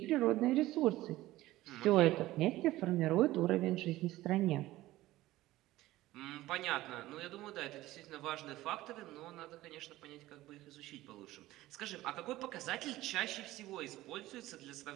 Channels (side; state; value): left; quieter; 16.7 dB